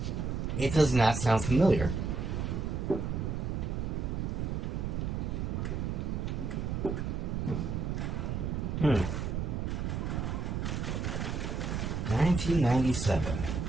It does not sound familiar. Hmm. 1997.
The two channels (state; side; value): noise; right; rumble, 1 dB below the sound